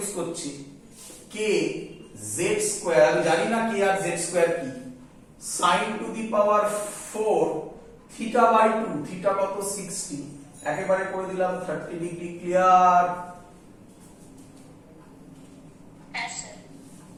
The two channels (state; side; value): identical; both; correlation 1.00